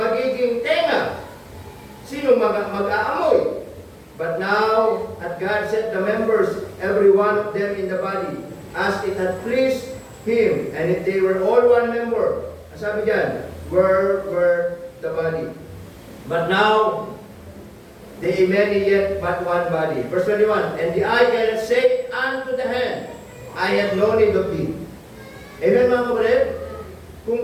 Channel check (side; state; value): both; identical; correlation 1.00